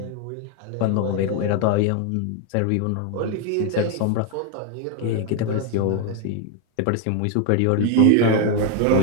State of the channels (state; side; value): different; both; correlation 0.01